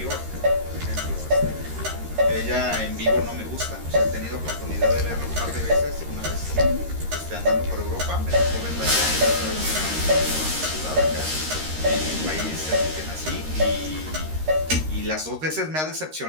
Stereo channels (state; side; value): late; left; 13 ms